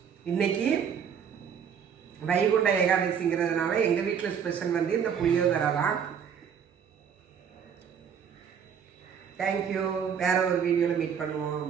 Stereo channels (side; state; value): left; quieter; 7.5 dB